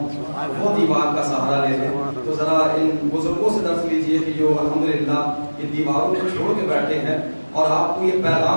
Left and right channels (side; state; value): both; inverted; correlation -1.00